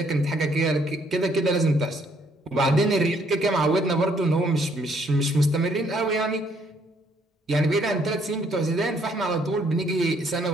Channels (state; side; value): normal; both; correlation 0.67